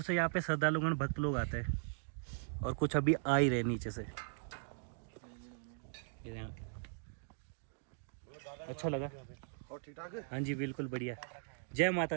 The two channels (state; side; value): silent; left; digital silence